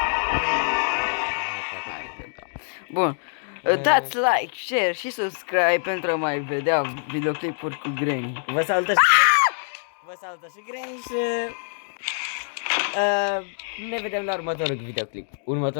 Hai că da. Bun. Dați like, share și subscribe pentru a mai vedea videoclipuri cu Granny. Vă salută și Vă salută și Granny și ne vedem la următorul videoclip.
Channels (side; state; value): right; silent; digital silence